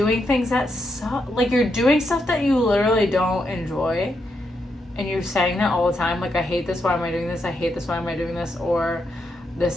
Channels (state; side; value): normal; both; correlation 0.81